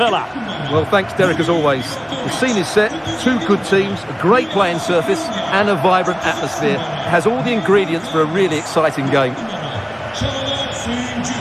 Well, thanks, Derek, as always. The scene is set, two good teams, a great playing surface and a vibrant atmosphere. It has all the ingredients for a really exciting game.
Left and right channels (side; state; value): both; identical; correlation 1.00